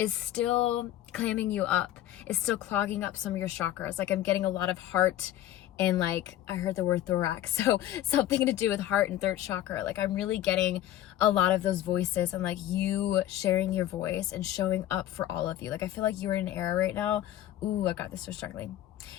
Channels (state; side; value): quieter; right; 13.1 dB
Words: still clamming you up, is still clogging up some of your chakras. Like I'm getting a lot of heart, and like I heard the word thorax, so something to do with heart and third chakra. Like I'm really getting a lot of those voices, and like you sharing your voice and showing up for all of you. Like I feel like you're in an era right now. Ooh, I got this, so struggling.